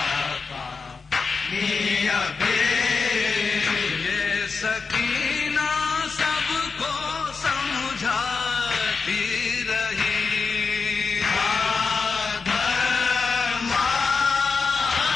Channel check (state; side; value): quieter; right; 4.8 dB